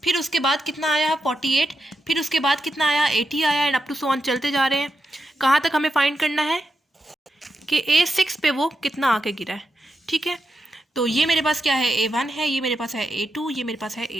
फिर उसके बाद कितना आया 48, फिर उसके बाद कितना आया 80 आया, and up to so on चलते जा रहे हैं। कहाँ तक हमें फाइंड करना है कि A6 पे वो कितना आके गिरा है, ठीक है। तो ये मेरे पास क्या है A1 है, ये मेरे पास है A2, ये मेरे पास है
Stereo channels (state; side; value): normal; both; correlation 0.87